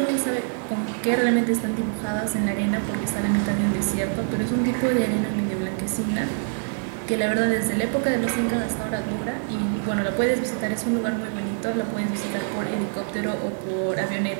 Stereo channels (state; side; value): silent; left; digital silence